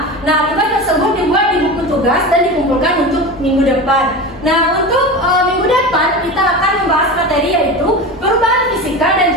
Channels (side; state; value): both; normal; correlation 0.27